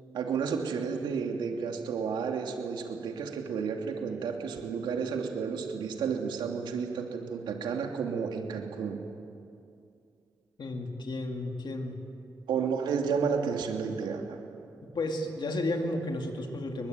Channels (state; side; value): quieter; left; 3.9 dB